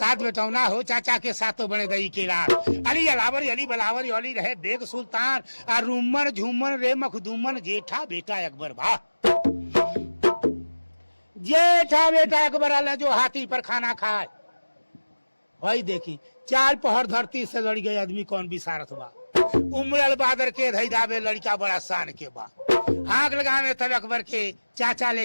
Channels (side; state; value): both; inverted; correlation -1.00